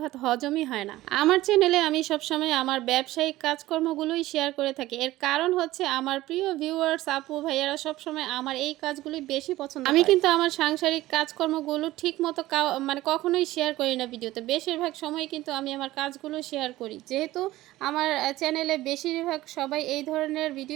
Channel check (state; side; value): quieter; left; 16.7 dB